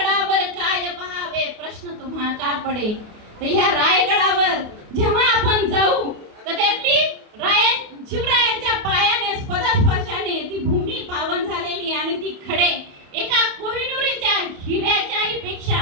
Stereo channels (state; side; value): late; left; 28 ms